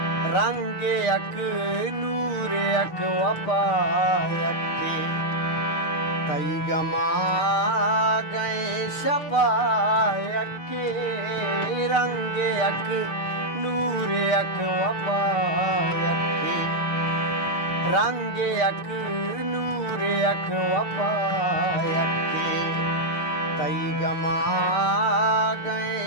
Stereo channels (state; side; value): late; right; 6.6 ms